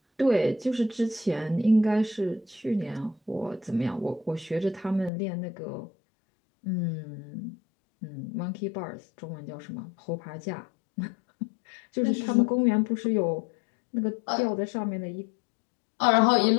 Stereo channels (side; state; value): right; drops out; at 5.1 s